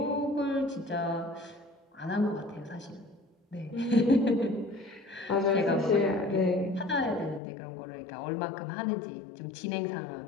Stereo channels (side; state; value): right; drops out; at 7.4 s